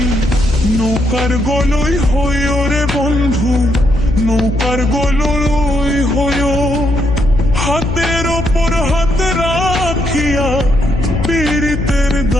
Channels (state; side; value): noise; left; hum, 5 dB below the sound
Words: নৌকার গলই হইও রে বন্ধু, নৌকার গলই হইও। হাতের ওপর হাত রাখিয়া পীড়িতের